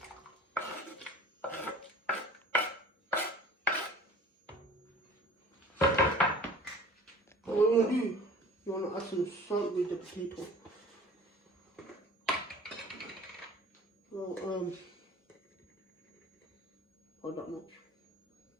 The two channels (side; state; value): both; normal; correlation 0.45